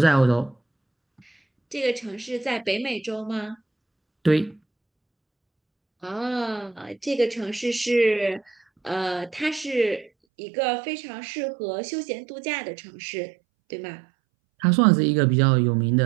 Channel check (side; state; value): left; drops out; at 10.1 s